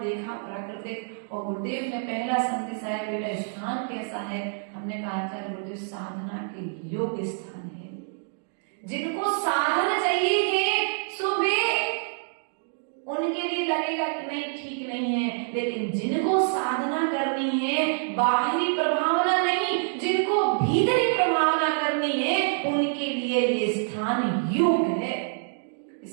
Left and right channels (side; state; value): left; silent; digital silence